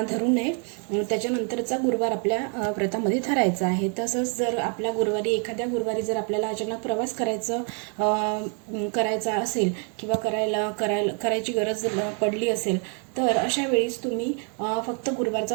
धरू नये. त्याच्यानंतरचा गुरुवार आपल्या व्रतामध्ये धरायचा आहे. तसंच जर आपल्या एखाद्या गुरुवारी जर आपल्याला अचानक प्रवास करायचा असेल किंवा करायची गरज पडली असेल, तर अशा वेळेस तुम्ही फक्त गुरुवारचा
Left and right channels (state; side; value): quieter; left; 39.9 dB